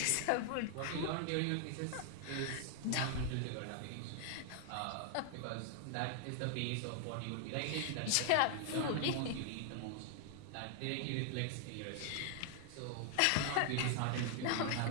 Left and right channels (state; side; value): different; both; correlation 0.00